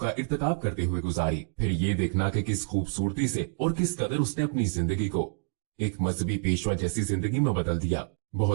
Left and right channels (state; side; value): silent; left; digital silence